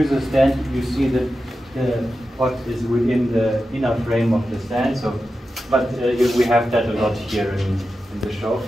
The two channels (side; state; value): both; normal; correlation 0.91